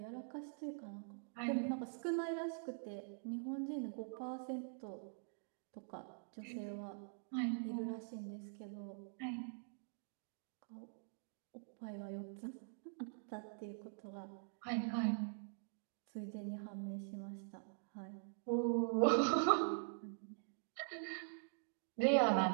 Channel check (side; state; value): left; silent; digital silence